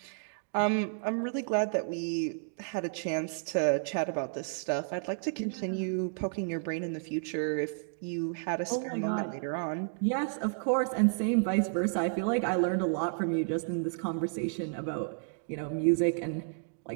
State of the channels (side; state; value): left; silent; digital silence